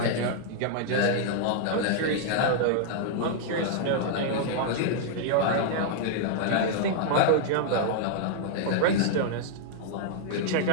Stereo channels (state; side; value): different; both; correlation -0.01